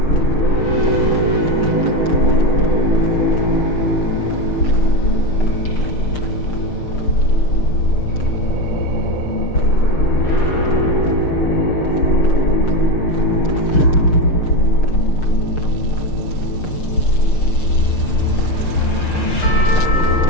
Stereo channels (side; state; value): right; late; 6.6 ms